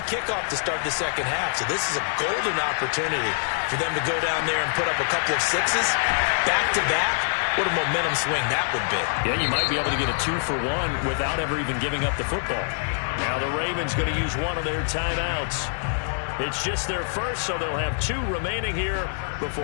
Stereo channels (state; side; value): silent; right; digital silence